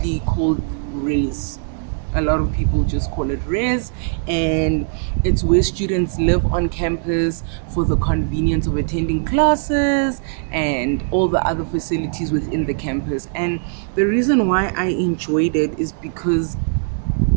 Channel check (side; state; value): left; silent; digital silence